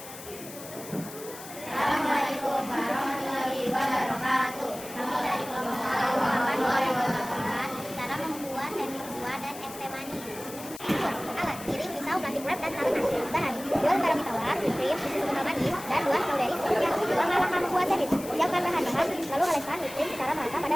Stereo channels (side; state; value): left; noise; hiss, 14 dB below the sound